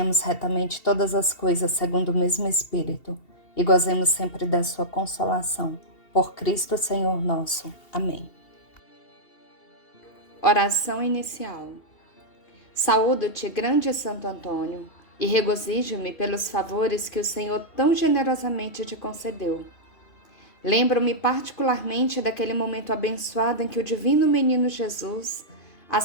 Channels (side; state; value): right; late; 2.8 ms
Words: retamente todas as coisas segundo o mesmo Espírito e gozemos sempre da sua consolação. Por Cristo Senhor nosso. Amém. Oração inicial. Saúdo-te, grande Santo Antônio, e regozijo-me pelos favores que o Senhor tão generosamente te concedeu. Lembro-me particularmente daquele momento abençoado em que o divino menino Jesus